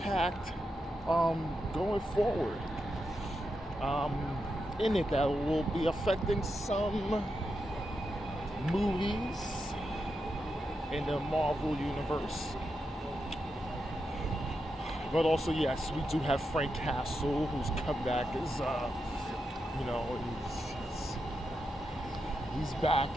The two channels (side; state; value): both; normal; correlation 0.86